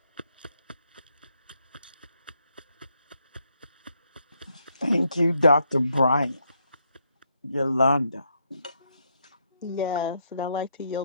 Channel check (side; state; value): both; inverted; correlation -0.77